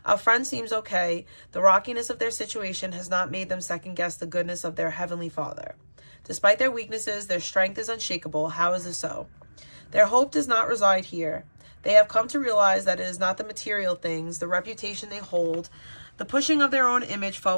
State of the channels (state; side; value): inverted; both; correlation -1.00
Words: our friend seems okay. The rockiness of their situation has not made them second-guess the goodness of their Heavenly Father. Despite their weaknesses, their strength is unshakable. How is this so? Their hope does not reside here. They have come to realize that it is not the material things, the reputation they hold, the pushing of their own image